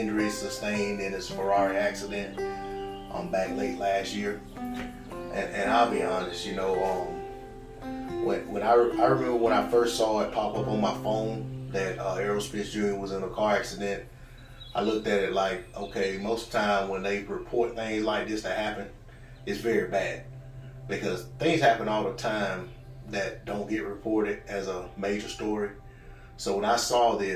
sustained in his Ferrari accident back late last year. And I'll be honest, you know, when I remember when I first saw it pop up on my phone that Errol Spence Jr. was in a car accident, I looked at it like, okay, most of the time when they report things like this that happen, it's very bad. Because things happen all the time that don't get reported as a major story. So when I saw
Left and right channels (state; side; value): identical; both; correlation 1.00